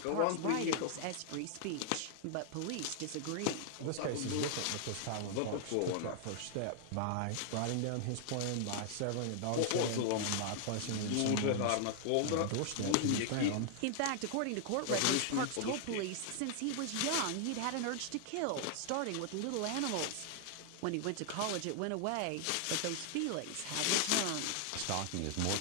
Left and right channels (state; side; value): different; both; correlation 0.00